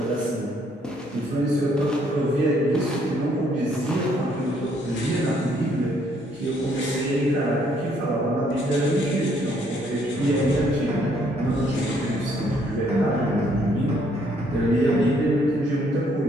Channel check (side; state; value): both; normal; correlation 0.67